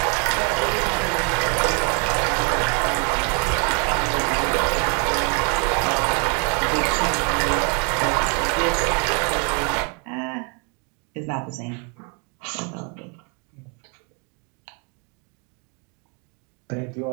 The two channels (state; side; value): quieter; left; 35.8 dB